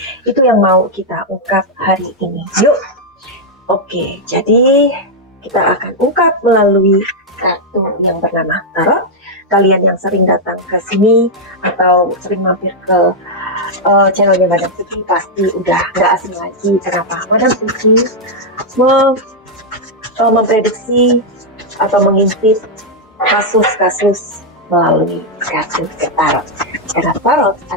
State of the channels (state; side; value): normal; both; correlation -0.02